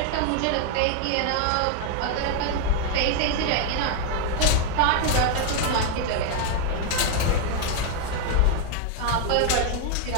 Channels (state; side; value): different; both; correlation 0.00